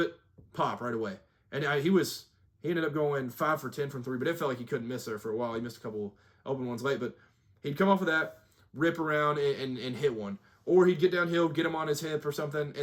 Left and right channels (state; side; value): identical; both; correlation 1.00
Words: pop right away. And he ended up going 5 for 10 from 3, but it felt like he couldn't miss there for a while. He missed a couple open ones late, but he'd come off of that, rip around and hit one. Or he'd get downhill, get him on his hip or something,